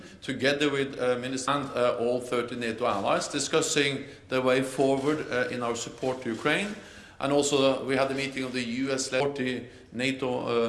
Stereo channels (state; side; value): identical; both; correlation 1.00